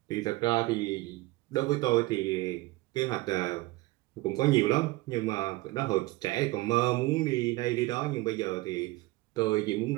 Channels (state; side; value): quieter; left; 20.4 dB